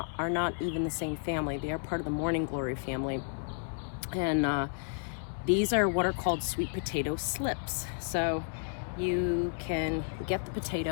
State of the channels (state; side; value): silent; right; 56 dB below the other